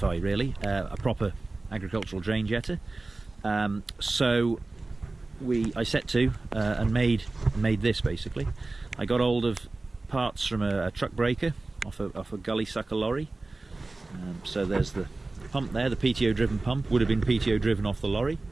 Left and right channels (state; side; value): quieter; left; 3.2 dB